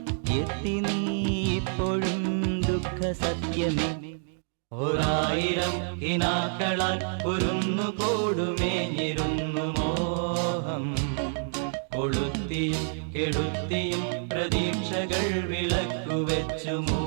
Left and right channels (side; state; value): left; silent; digital silence